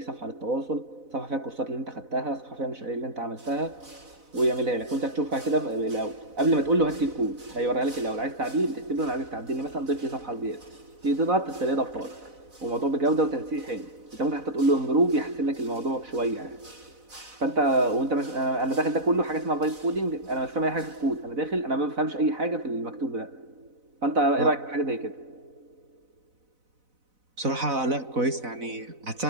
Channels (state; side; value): late; left; 4.0 ms